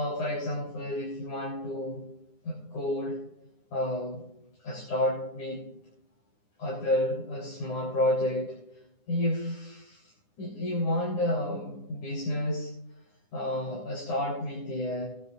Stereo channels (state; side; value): late; right; 9.8 ms